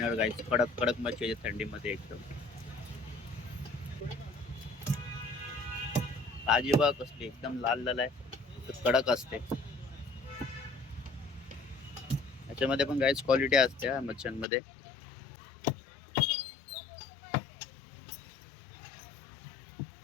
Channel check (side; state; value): right; drops out; at 14.5 s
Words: गाईज, कडक कडक मच्छी आहे थंडीमध्ये एकदम. ताजी बघ कसली एकदम लाल लाल आहे, कडक असते. याच्यामध्ये पण गाईज क्वालिटी असते मच्छ्यांमध्ये.